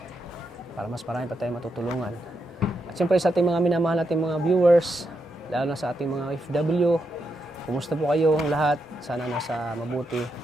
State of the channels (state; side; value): normal; both; correlation 0.83